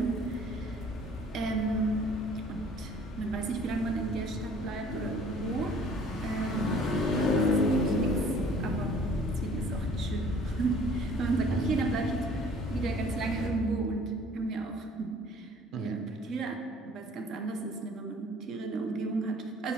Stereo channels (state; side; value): normal; both; correlation 0.53